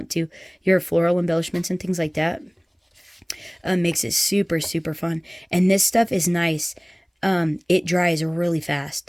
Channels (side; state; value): both; identical; correlation 1.00